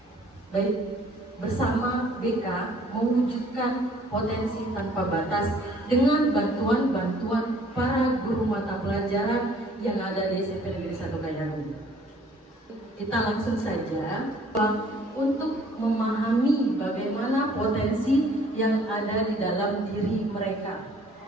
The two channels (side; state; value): both; normal; correlation 0.57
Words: Baik, bersama BK mewujudkan potensi tanpa batas dengan bantuan-bantuan para guru mata pelajaran yang ada di SMP Negeri 1 Kayangan. Kita langsung saja untuk memahami bagaimana potensi yang ada di dalam diri mereka.